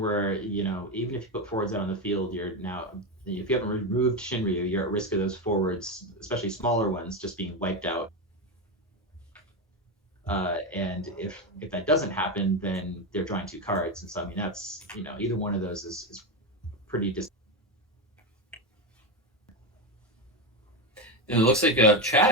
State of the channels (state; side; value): normal; both; correlation 0.14